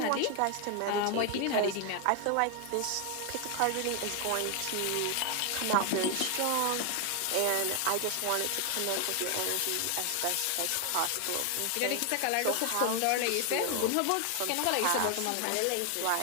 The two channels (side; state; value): both; different; correlation 0.00